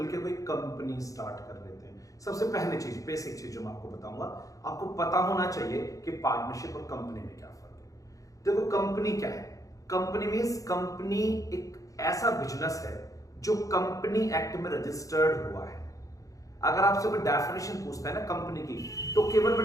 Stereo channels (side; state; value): right; late; 0.16 ms